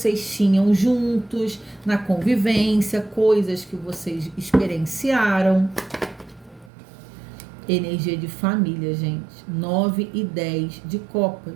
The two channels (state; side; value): drops out; left; at 6.7 s